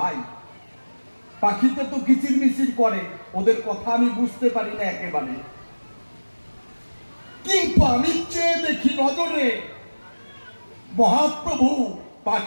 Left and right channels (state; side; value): inverted; both; correlation -1.00